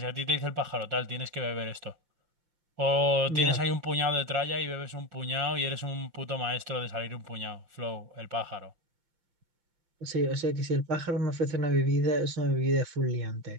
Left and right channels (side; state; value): left; late; 5.8 ms